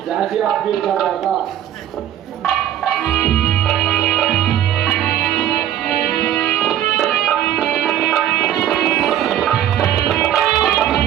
जैसी आपकी इच्छा भ्राता।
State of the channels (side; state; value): left; quieter; 11.2 dB